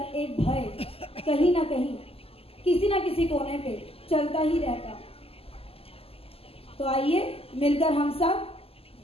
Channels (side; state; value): right; late; 0.28 ms